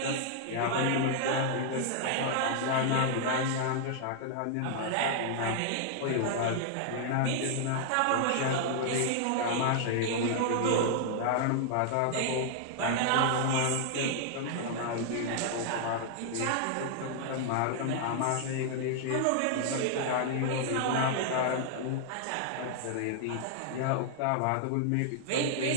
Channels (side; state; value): both; different; correlation -0.01